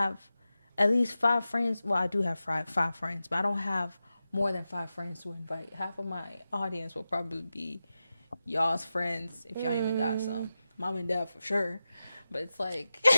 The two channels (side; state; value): both; inverted; correlation -0.93